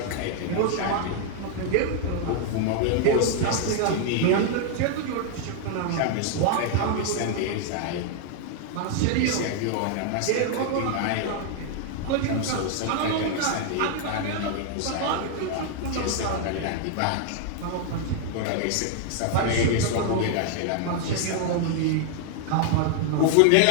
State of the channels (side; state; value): both; different; correlation 0.00